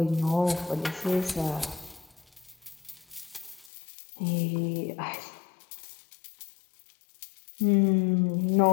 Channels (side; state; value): right; drops out; at 3.7 s